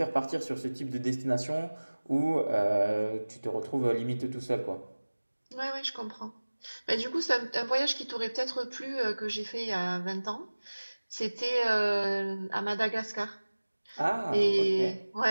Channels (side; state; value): both; inverted; correlation -1.00